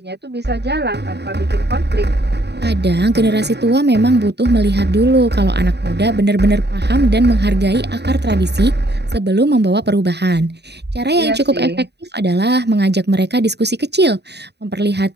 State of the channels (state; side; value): late; left; 0.49 ms